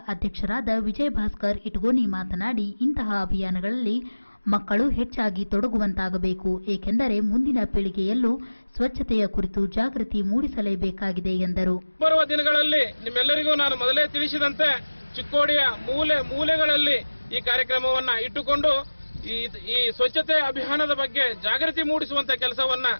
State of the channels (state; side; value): inverted; both; correlation -1.00